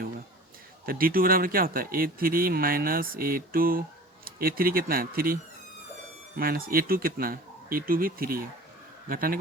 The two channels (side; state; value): both; normal; correlation 0.41